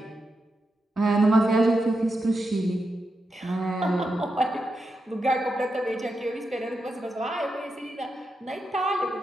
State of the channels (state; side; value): normal; both; correlation 0.87